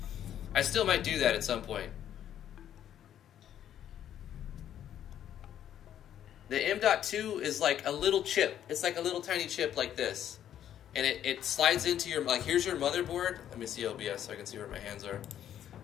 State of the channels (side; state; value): right; quieter; 10.5 dB